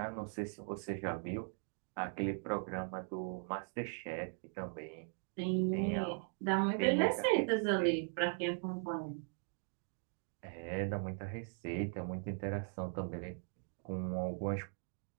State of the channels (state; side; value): silent; left; 51 dB below the other